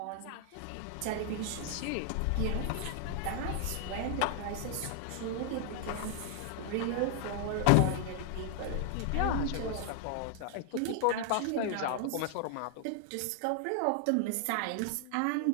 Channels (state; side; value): different; both; correlation 0.00